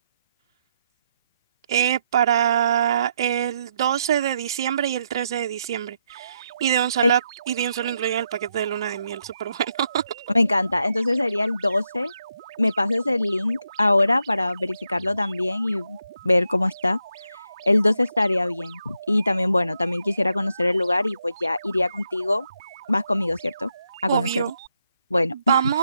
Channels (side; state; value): both; inverted; correlation -0.81